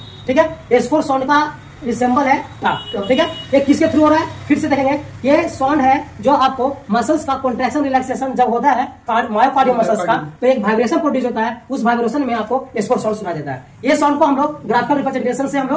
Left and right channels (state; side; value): identical; both; correlation 1.00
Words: ठीक है, एस4 साउंड का सिंबल है टा। ठीक है, ये किसके थ्रू हो रहा है, फिर से देखेंगे। ये साउंड है जो आपको मसल्स का कॉन्ट्रैक्शन रिलैक्सेशन जब होता है मायोकार्डियल मसल्स का, तो एक वाइब्रेशन प्रोड्यूस होता है, उस वाइब्रेशन में आपको एस4 साउंड सुना देता है। ये साउंड को हम लोग ग्राफिकल रिप्रेजेंटेशन से हम